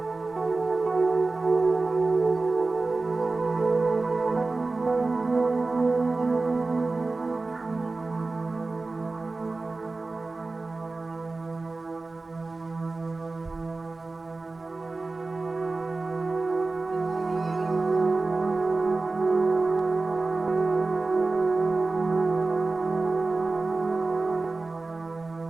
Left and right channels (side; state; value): left; quieter; 3.5 dB